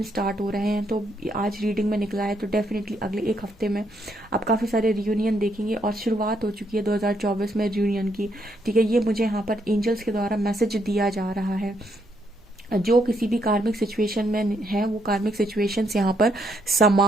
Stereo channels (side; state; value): both; normal; correlation 0.74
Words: स्टार्ट हो रहे हैं। तो आज रीडिंग में निकला है, तो डेफिनेटली अगले एक हफ्ते में आप काफ़ी सारे रियूनियन देखेंगे और शुरुआत हो चुकी है 2024 में रियूनियन की। ठीक है, ये मुझे यहाँ पर एंजल्स के द्वारा मैसेज दिया जा रहा है। जो किसी भी कार्मिक सिचुएशन में है, वो कार्मिक सिचुएशंस यहाँ पर